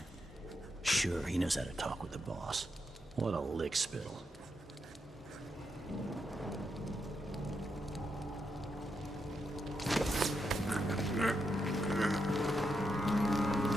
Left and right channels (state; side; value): normal; both; correlation 0.83